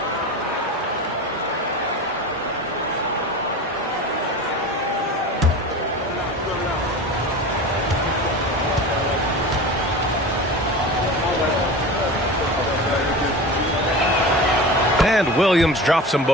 And Williams drops them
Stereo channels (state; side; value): normal; both; correlation 0.32